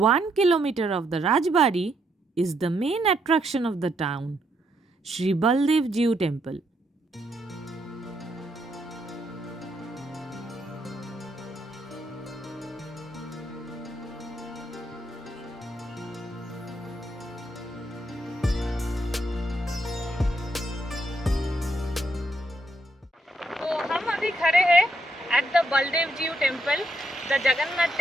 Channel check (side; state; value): both; normal; correlation 0.76